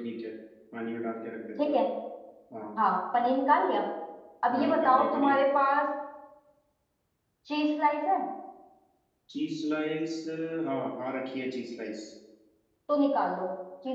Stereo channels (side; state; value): both; identical; correlation 1.00